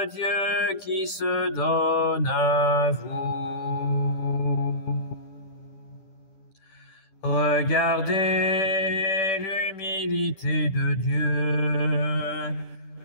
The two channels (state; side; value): late; right; 10 ms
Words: Dieu qui se donne à vous. Regardez l'humilité de Dieu.